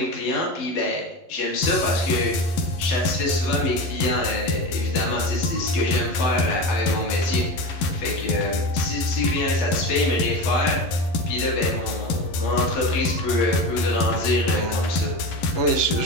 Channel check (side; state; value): right; late; 11 ms